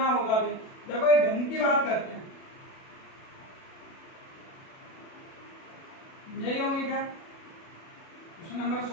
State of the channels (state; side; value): late; right; 37 ms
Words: होगा भी। देखो एक घन की बात करते हैं, यही होंगे क्या। क्वेश्चन नंबर